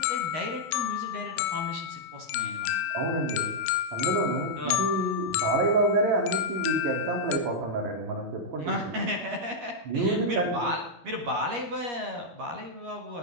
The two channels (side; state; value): left; late; 13 ms